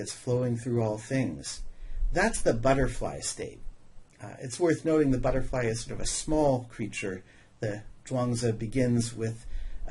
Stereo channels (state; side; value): identical; both; correlation 1.00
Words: flowing through all things, that's the butterfly state. It's worth noting the butterfly is sort of a small creature. The Zhuangzi begins with